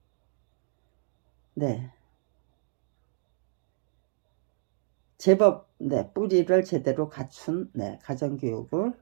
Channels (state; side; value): silent; left; digital silence